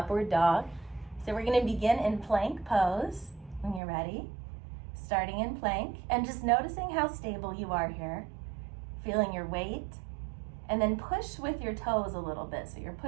dog. So we're going to begin in plank pose when you're ready. Starting in plank and just noticing how stable you are here. Feeling your weight. And then push with your toes a little bit. So you're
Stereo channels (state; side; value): drops out; left; at 3.8 s